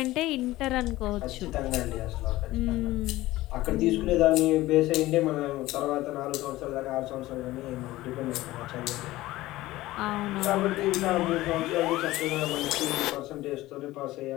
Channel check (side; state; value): right; quieter; 17.3 dB